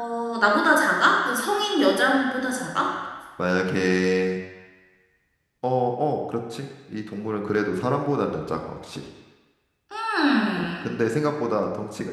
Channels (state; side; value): identical; both; correlation 1.00